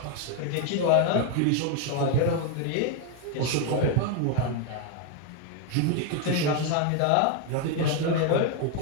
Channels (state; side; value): different; both; correlation 0.01